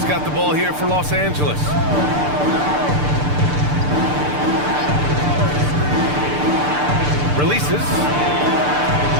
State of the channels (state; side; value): late; left; 6.8 ms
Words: got the ball here for Los Angeles. Releases.